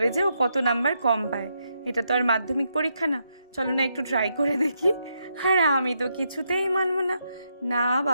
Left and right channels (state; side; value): inverted; both; correlation -0.80